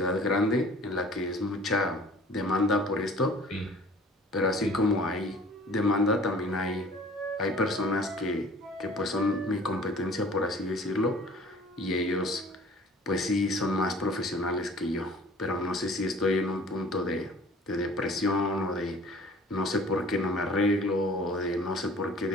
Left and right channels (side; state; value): both; normal; correlation 0.49